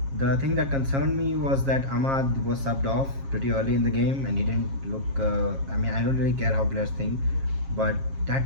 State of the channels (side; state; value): left; late; 7.4 ms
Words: The thing that concerned me was that Ahmad was subbed off pretty early in the game, and he didn't look. I mean, I don't really care how players think, but that